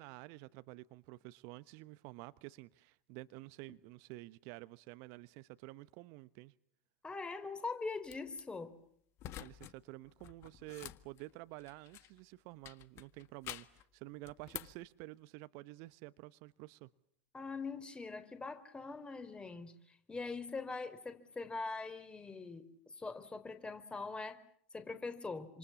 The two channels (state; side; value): normal; both; correlation 0.62